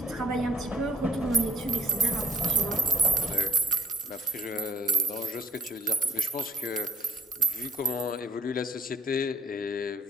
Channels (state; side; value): normal; both; correlation 0.55